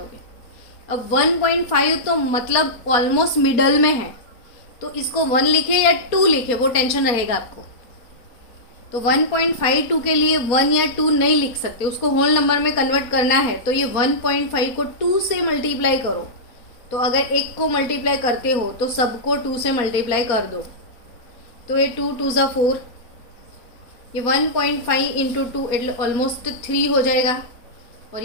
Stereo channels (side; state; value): right; late; 4.2 ms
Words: अब 1.5 तो मतलब ऑलमोस्ट मिडल में है, तो इसको 1 लिखे या 2 लिखे वो टेंशन रहेगा आपको। तो 1.52 के लिए 1 या 2 नहीं लिख सकते, उसको होल नंबर में कन्वर्ट करना है। तो ये 1.5 को 2 से मल्टीप्लाई करो। तो अगर एक को मल्टीप्लाई करते हो तो सबको 2 से मल्टीप्लाई कर दो। तो ये 2 2 ज़ा 4, ये 1.5 इंटू 2 इट ऑलमोस्ट 3 हो जाएगा, और